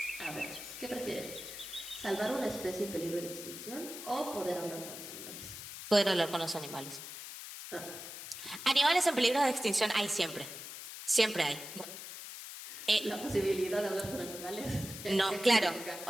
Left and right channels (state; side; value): noise; left; hiss, 10 dB below the sound